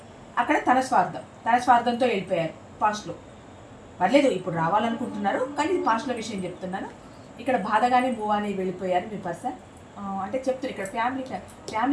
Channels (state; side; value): identical; both; correlation 1.00